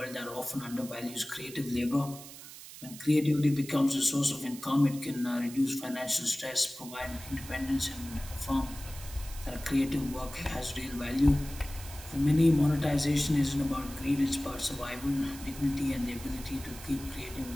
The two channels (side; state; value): right; noise; hiss, 15 dB below the sound